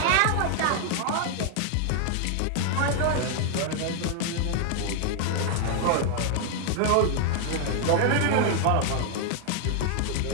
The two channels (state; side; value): different; both; correlation 0.00